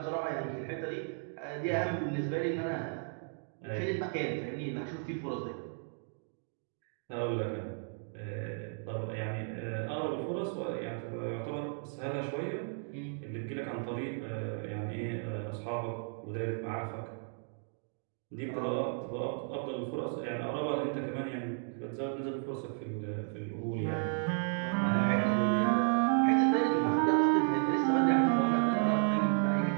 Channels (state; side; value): silent; left; 55 dB below the other